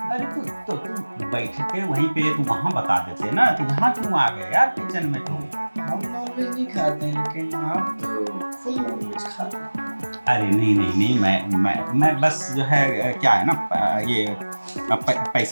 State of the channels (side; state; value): both; inverted; correlation -1.00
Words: अरे तो तुम बैठे थे वहीं पे, तुम वहाँ बता देते ना, तो यहाँ क्यों आ गए यार किचन में तुम? हम नॉनवेज नहीं खाते हैं, लेकिन आप तो फुल नॉनवेज खाते हैं। अरे नहीं, मैं बस जो है क्या है ना, ये